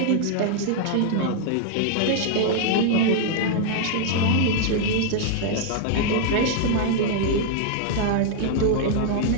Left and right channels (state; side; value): different; both; correlation -0.01